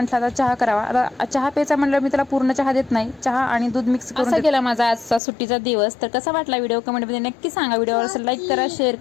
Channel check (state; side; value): drops out; right; at 5.2 s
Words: आता चहा करावा. आता चहा प्यायचा म्हटलं मी त्याला पूर्ण चहा देत नाही, चहा आणि दूध मिक्स करून. असा गेला माझा आजचा सुट्टीचा दिवस. तर कसा वाटला व्हिडिओ कमेंटमध्ये नक्की सांगा. व्हिडिओवर लाईक करा, शेअर